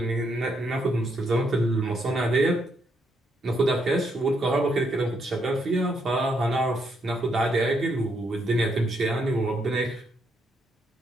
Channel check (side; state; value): both; normal; correlation 0.76